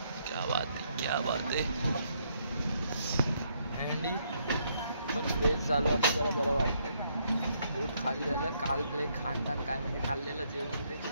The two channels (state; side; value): inverted; both; correlation -0.73